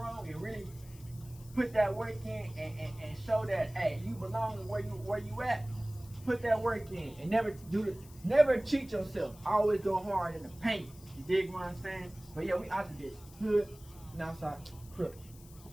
and really put that work in and show that hey, you belong where you at. Put that work in and never cheat yourself. Always go hard in the paint. You dig what I'm saying? But yeah, we out to this hood and outside crook.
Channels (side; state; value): left; noise; hiss, 22 dB below the sound